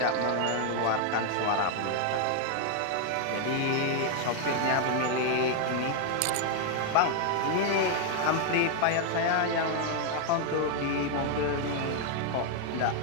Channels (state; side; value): different; both; correlation 0.00